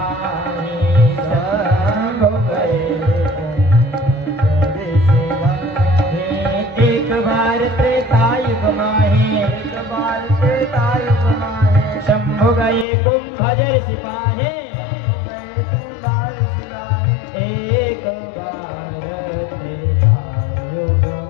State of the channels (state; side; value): drops out; right; at 12.9 s